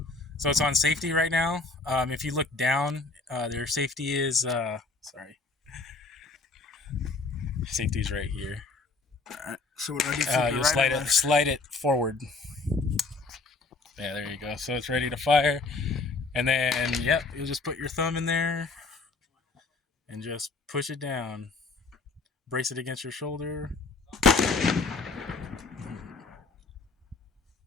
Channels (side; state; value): right; quieter; 3.8 dB